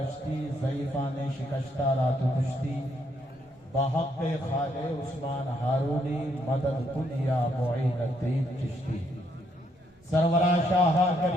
ضعیفان شکشتہ رات کشتی، بحق خالِ عثمان ہارونی مدد دنیا معین الدین چشتی، سرورہ شاہ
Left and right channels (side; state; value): both; normal; correlation 0.73